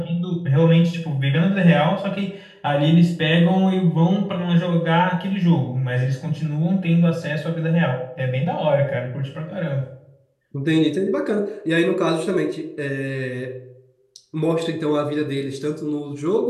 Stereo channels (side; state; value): both; identical; correlation 1.00